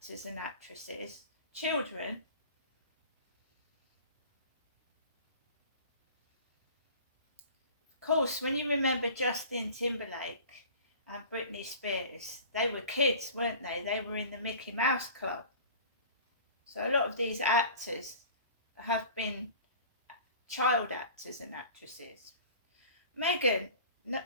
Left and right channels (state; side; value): inverted; both; correlation -0.42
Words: and actresses, children. Of course, when you remember Justin Timberlake and Britney Spears, they were kids, weren't they? They were in the Mickey Mouse Club. So a lot of these actors have been child actors and actresses. Megan,